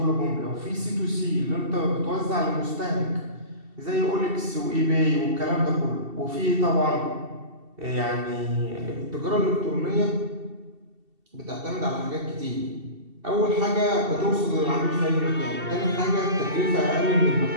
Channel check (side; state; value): left; late; 2.7 ms